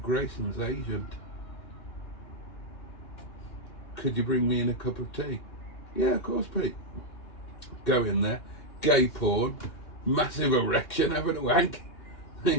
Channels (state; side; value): late; right; 2.9 ms